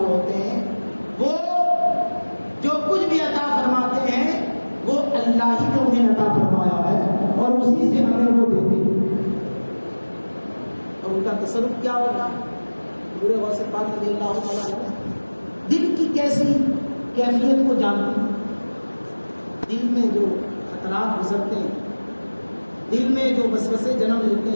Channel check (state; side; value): inverted; both; correlation -1.00